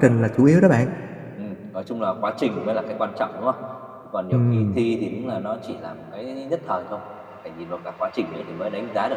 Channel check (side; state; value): both; identical; correlation 1.00